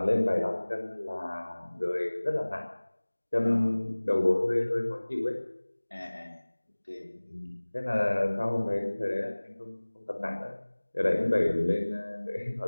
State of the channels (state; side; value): inverted; both; correlation -1.00